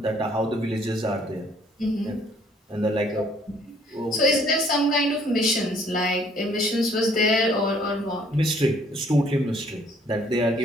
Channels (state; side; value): normal; both; correlation 0.61